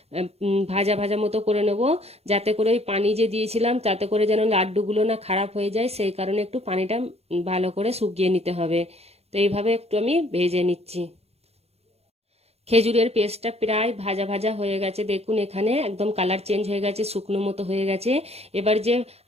ভাজা ভাজা মতো করে নেব, যাতে করে ওই পানি যে দিয়েছিলাম তাতে করে যেন লাড্ডুগুলো না খারাপ হয়ে যায়, সেই কারণে একটু পানিটা ভালো করে শুকিয়ে নিতে হবে। তো এইভাবে একটু আমি ভেজে নিচ্ছি। খেজুরের পেস্টটা প্রায় ভাজা ভাজা হয়ে গেছে, দেখুন এখানে একদম কালার চেঞ্জ হয়ে গেছে, শুকনো মতো হয়ে গেছে। এবার যে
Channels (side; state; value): left; late; 0.30 ms